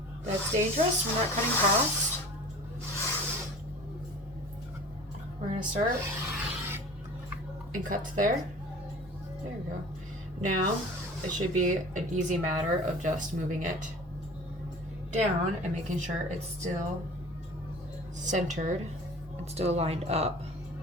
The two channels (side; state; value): both; normal; correlation 0.41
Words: That's dangerous. We're not cutting past. We're gonna start and cut to there. There we go. Now it should be an easy matter of just moving it down and making sure it's still centered and still lined up.